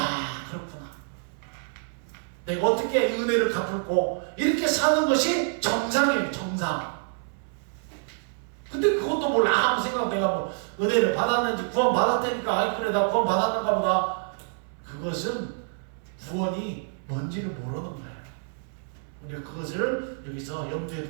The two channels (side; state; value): left; silent; 60 dB below the other